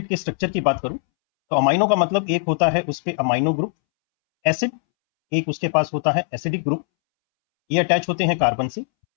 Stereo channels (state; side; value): silent; right; 65 dB below the other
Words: के स्ट्रक्चर की बात करूं तो अमाइनो का मतलब एक होता है उस पे अमाइनो ग्रुप एसिड, एक उसके पास होता है एसिडिक ग्रुप, ये अटैच होते हैं कार्बन से,